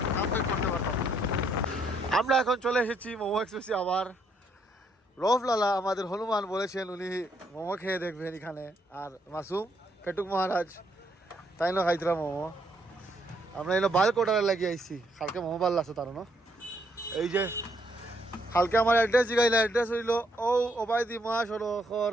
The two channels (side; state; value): both; normal; correlation 0.72